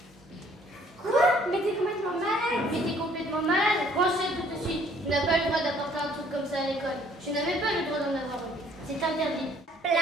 Quoi? Mais t'es complètement malade. Mais t'es complètement malade. Branchez tout de suite. Tu n'as pas le droit d'apporter un truc comme ça à l'école. Je n'avais pas le droit d'en avoir une. C'est interdit.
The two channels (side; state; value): both; normal; correlation 0.60